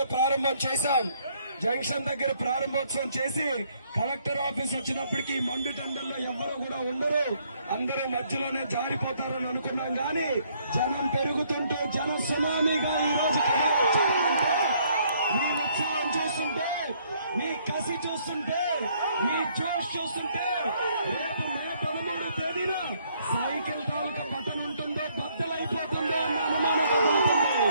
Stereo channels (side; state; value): both; inverted; correlation -0.67